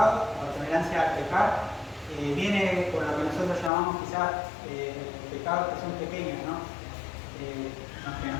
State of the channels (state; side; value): drops out; right; at 3.7 s